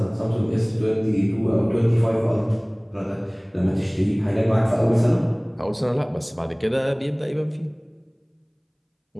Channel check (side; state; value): both; identical; correlation 1.00